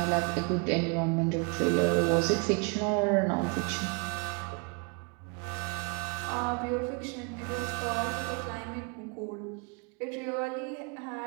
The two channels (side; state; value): left; quieter; 34.5 dB